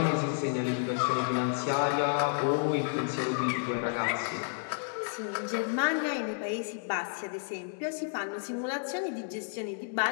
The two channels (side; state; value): right; silent; 57 dB below the other